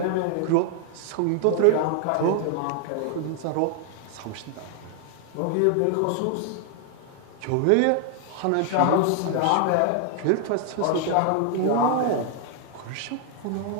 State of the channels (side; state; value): both; different; correlation 0.00